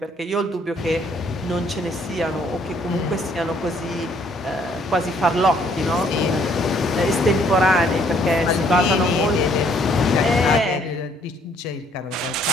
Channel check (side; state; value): both; normal; correlation 0.64